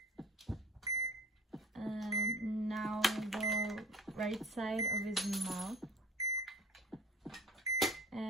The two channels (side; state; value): both; normal; correlation 0.43